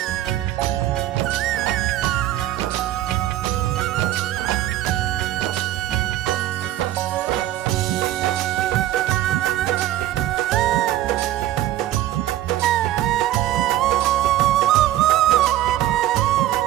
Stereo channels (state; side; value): quieter; left; 13.7 dB